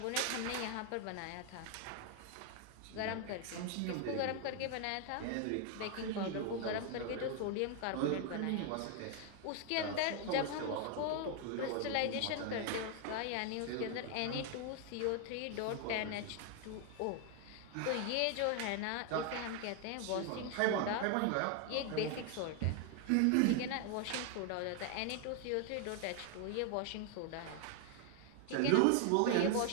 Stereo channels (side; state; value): both; different; correlation 0.00